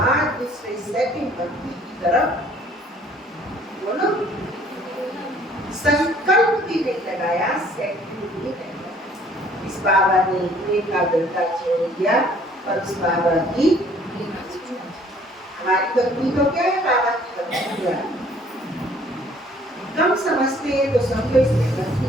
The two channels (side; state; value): both; normal; correlation 0.58